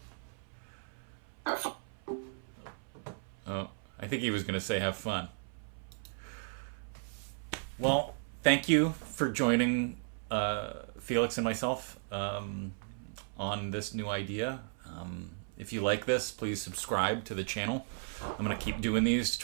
Have fun. Oh, I think he was going to say have fun. Well, thank you for joining Felix and myself on this new idea. If you like this, please subscribe to the channel. I'm going to keep doing these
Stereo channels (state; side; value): silent; left; 54 dB below the other